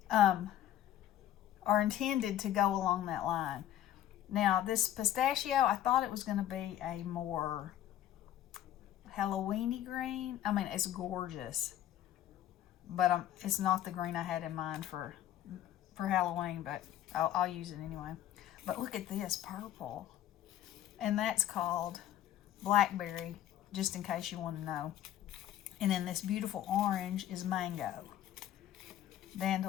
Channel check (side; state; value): right; quieter; 12.0 dB